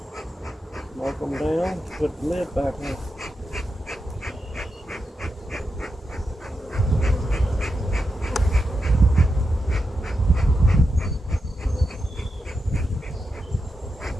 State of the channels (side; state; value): both; normal; correlation 0.87